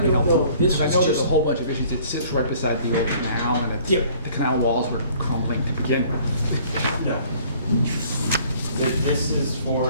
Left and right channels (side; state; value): both; inverted; correlation -0.56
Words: know. This I was know there's a just, whole bunch of issues. It sits right beside the old canal, and it's, Yep. the canal walls were crumbling to begin with. No. This is